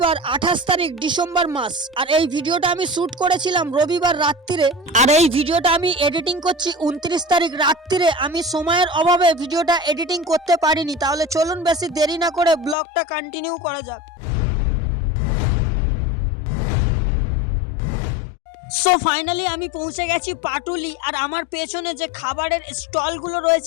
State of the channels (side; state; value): right; drops out; at 12.8 s